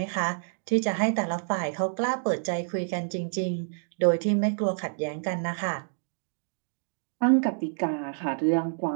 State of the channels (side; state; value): left; silent; digital silence